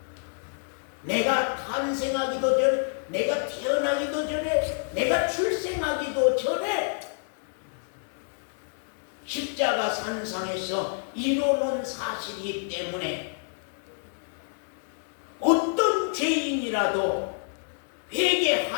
내가 탄생하기도 전에 내가 태어나기도 전에 내가 출생하기도 전에 십자가 산상에서 이루어놓은 사실이기 때문에 어떤 죄인이라도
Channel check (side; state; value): right; silent; digital silence